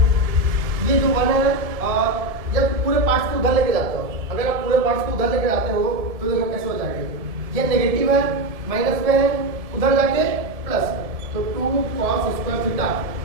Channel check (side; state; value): left; late; 1.7 ms